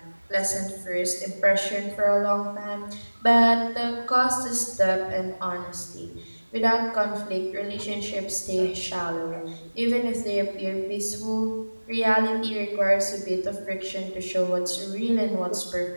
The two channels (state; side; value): inverted; both; correlation -1.00